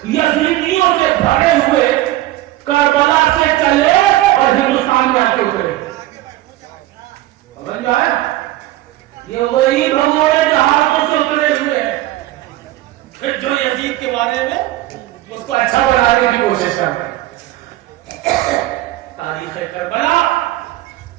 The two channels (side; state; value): left; quieter; 16.0 dB